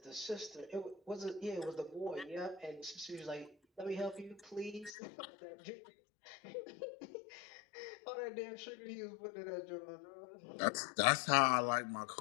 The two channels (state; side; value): drops out; right; at 5.0 s